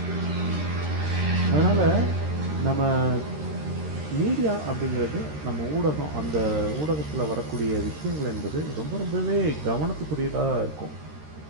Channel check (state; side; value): late; left; 13 ms